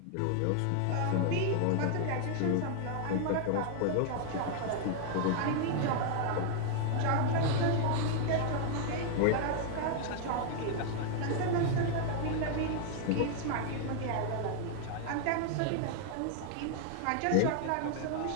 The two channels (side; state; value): both; different; correlation 0.00